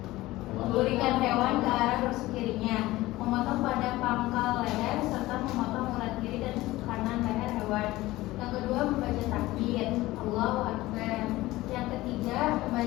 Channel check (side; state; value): right; quieter; 18.0 dB